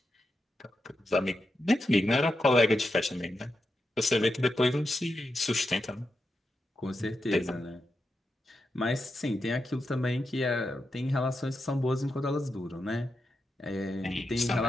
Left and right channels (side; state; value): both; normal; correlation 0.87